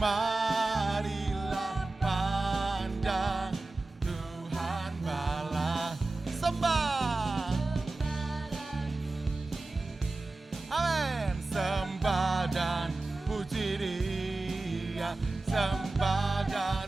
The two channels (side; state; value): left; quieter; 3.2 dB